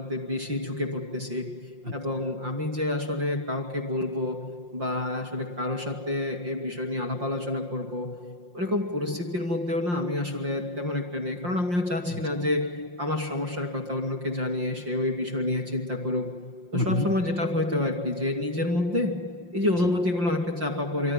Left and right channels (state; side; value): late; left; 5.7 ms